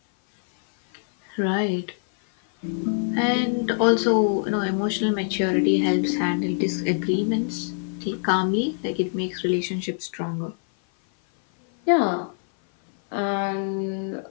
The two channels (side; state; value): right; silent; 57 dB below the other